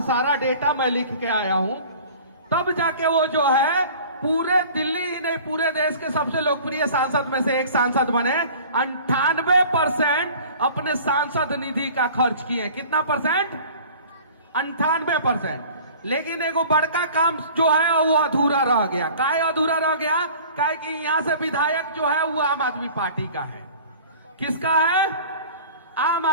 सारा डेटा मैं लिख के आया हूं, तब जाके वो जो है पूरे दिल्ली ही नहीं पूरे देश के सबसे लोकप्रिय सांसद में से एक सांसद बने। 98% अपने सांसद निधि का खर्च किए। कितना परसेंट? 98%। लेकिन एगो बड़का काम जो है वो अधूरा रह गया। काहे अधूरा रह गया? काहे कि यहां से विधायक जो है वो आम आदमी पार्टी का है। किसका है? आम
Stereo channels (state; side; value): inverted; both; correlation -0.45